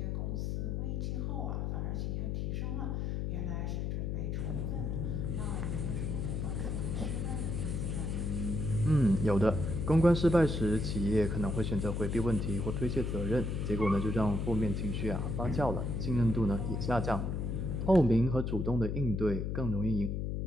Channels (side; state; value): left; noise; hum, 1 dB below the sound